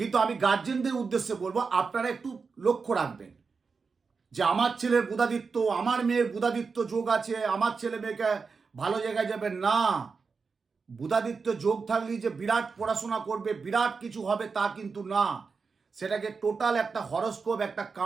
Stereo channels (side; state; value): left; quieter; 5.0 dB